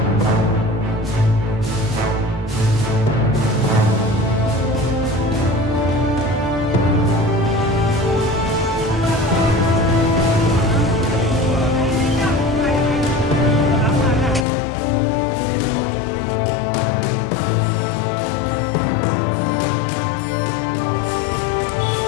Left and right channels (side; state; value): right; drops out; at 14.5 s